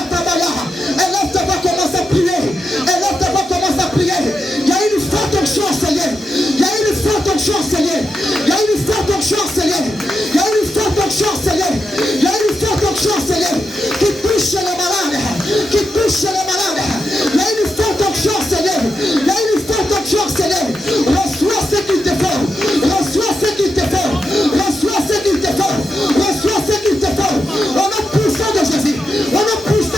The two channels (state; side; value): normal; both; correlation 0.87